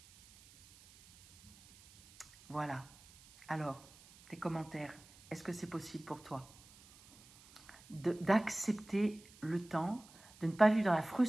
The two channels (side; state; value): right; noise; hiss, 24 dB below the sound